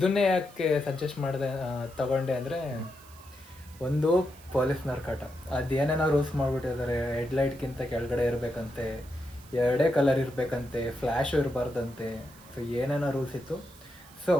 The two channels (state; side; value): noise; right; hiss, 23 dB below the sound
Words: ಯಾಕೆ ಸಜೆಸ್ಟ್ ಮಾಡಿದೆ ತಗೊಂಡೆ ಅಂದರೆ, ಒಂದು ಪೊಲೀಸ್ನವ್ರ ಕಾಟ. ಅದೇನೇನೋ ರೂಲ್ಸ್ ಮಾಡಿಬಿಟ್ಟಿದ್ದಾರೆ. ಹೆಡ್ಲೈಟ್ಗಿಂತ ಕೆಳಗಡೆ ಇರಬೇಕಂತೆ, ಎರಡೇ ಕಲರ್ ಇರಬೇಕಂತೆ, ಫ್ಲ್ಯಾಶು ಇರಬಾರ್ದಂತೆ. ಸೊ ಏನೇನೋ ರೂಲ್ಸ್ ಇತ್ತು. ಸೊ